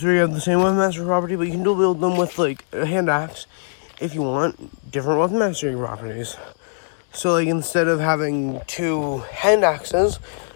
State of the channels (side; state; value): right; silent; digital silence